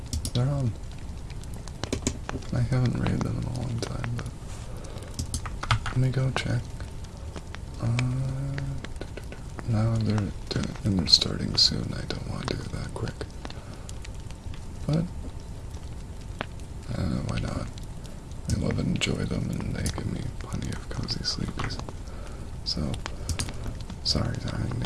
They're on. I haven't rated them in a long time, but let me go check. Now they're starting soon. I don't want to do it that quick. But why not? I love and enjoy them, and they give me plenty of cozy sleepies. So, sorry, darling,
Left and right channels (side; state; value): both; identical; correlation 1.00